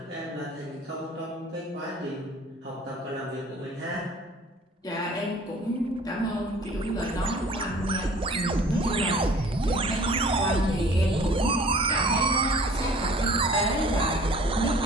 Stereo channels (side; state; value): both; normal; correlation 0.49